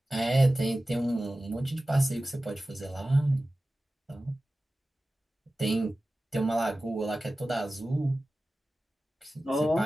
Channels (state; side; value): normal; both; correlation 0.96